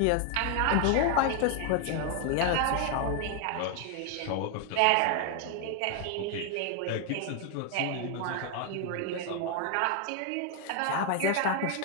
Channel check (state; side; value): different; both; correlation 0.01